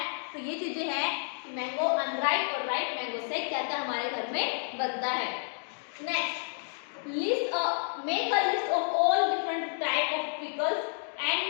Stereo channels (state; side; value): silent; right; 58 dB below the other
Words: तो ये चीजें हैं कि मैंगो अनराइप और राइप मैंगो से क्या क्या हमारे घर में बनता है। Next, make a list of all different type of pickles and